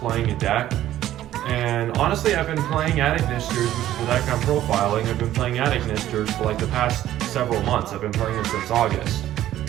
a deck. And honestly, I've been playing Attic Nisters, which is the deck I'm profiling. I've been playing Attic Nisters for like the past several months. I've been playing it since August.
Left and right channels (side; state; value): left; quieter; 13.1 dB